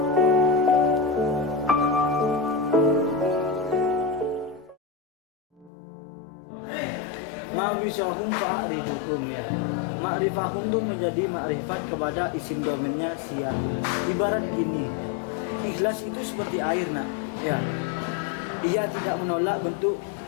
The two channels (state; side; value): drops out; right; at 5.7 s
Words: Ma'rifahum fa'rifukum ya. Ma'rifahum itu menjadi makrifat kepada isim domennya siap. Ibarat gini, ikhlas itu seperti air nak. Ya, ia tidak menolak bentuk